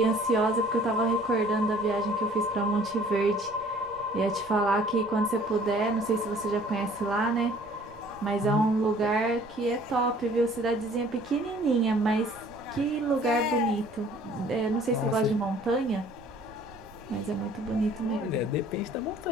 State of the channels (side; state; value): right; noise; rumble, 23 dB below the sound